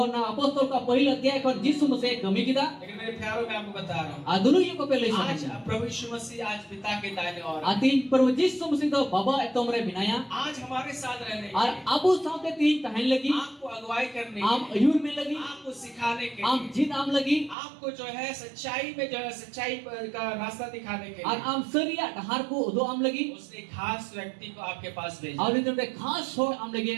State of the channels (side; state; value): left; drops out; at 17.6 s